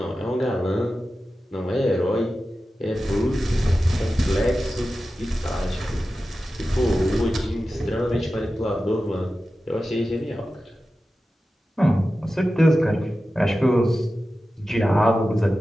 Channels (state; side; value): normal; both; correlation 0.93